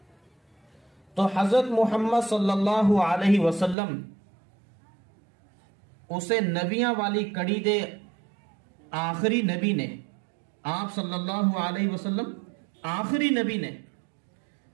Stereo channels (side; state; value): left; drops out; at 3.8 s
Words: तो हजरत मुहम्मद सल्लल्लाहु अलैहि वसल्लम उसे नबियां वाली कड़ी दे आखिरी नबी ने, आप सल्लल्लाहु अलैहि वसल्लम आखिरी नबी ने,